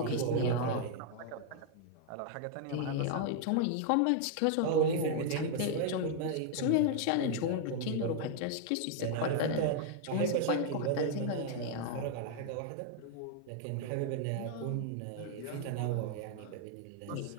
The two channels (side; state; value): both; different; correlation 0.00